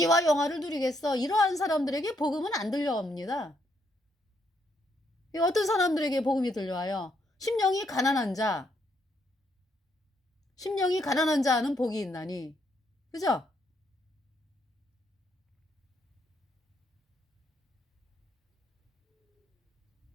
영화를 누리겠어. 이러한 사람들에게 복음은 안 들려옵니다. 이 어떤 사람들에게 복음이 들려와요? 심령이 가난한 자. 심령이 가난한 자는 복이 있나니. 그죠?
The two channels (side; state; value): both; normal; correlation 0.74